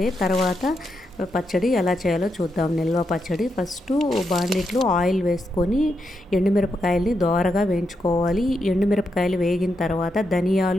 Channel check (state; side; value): normal; both; correlation 0.83